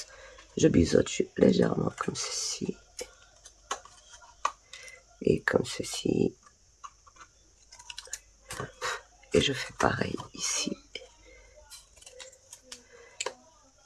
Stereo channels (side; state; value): both; identical; correlation 1.00